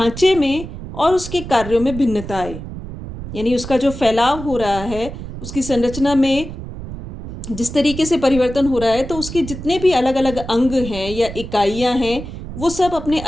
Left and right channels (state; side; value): noise; right; rumble, 10 dB below the sound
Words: में और उसके कार्यों में भिन्नता आए, यानी उसका जो फैलाव हो रहा है, उसकी संरचना में जिस तरीके से परिवर्तन हो रहा है, तो उसके जितने भी अलग अलग अंग हैं या इकाइयां हैं, वो सब अपने